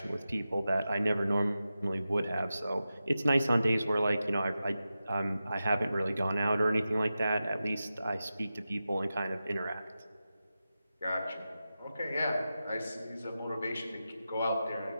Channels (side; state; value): both; inverted; correlation -0.92